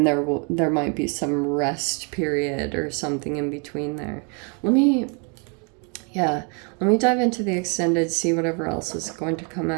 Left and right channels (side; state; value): left; quieter; 36.4 dB